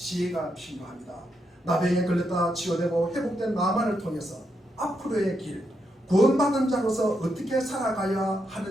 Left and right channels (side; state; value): both; normal; correlation 0.81